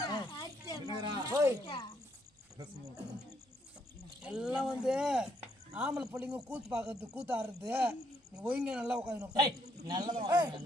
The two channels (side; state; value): both; normal; correlation 0.72